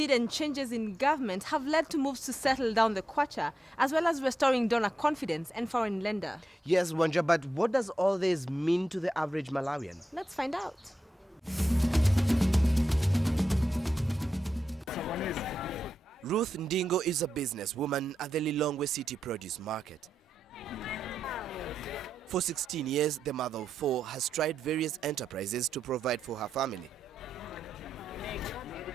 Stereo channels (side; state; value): both; normal; correlation 0.88